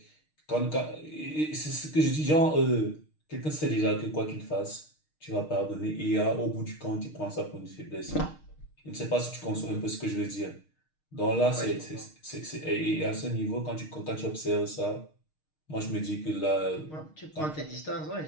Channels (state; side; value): late; right; 6.5 ms